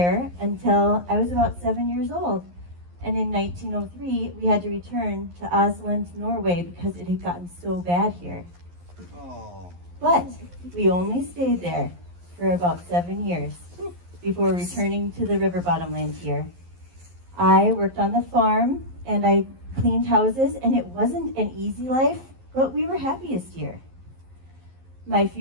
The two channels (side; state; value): left; late; 11 ms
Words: until I was about 7 years old. And in 1903, we had to return to Oslo, Norway, because it had gotten so bad here. Oh. But we only stayed there for about 7 years before returning to the river bottomland here. I worked on the farm and I cleaned houses, and it wasn't an easy life, but we were happiest here. My